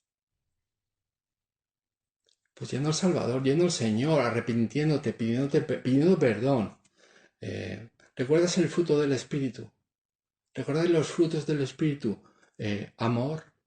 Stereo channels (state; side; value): identical; both; correlation 1.00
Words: Pues yendo al Salvador, yendo al Señor, arrepintiéndote, pidiendo perdón. ¿Recuerdas el fruto del Espíritu? ¿Recuerdas los frutos del Espíritu? Amor,